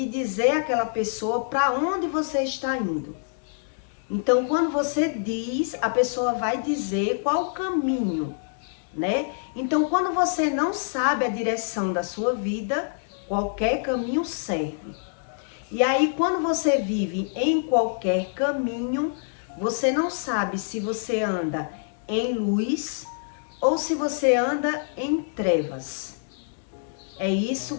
dizer àquela pessoa para onde você está indo. Então, quando você diz, a pessoa vai dizer qual o caminho, né? Então, quando você não sabe a direção da sua vida, qualquer caminho serve. E aí, quando você vive em qualquer caminho, você não sabe se você anda em luz ou se você anda em trevas. É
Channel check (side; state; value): right; silent; digital silence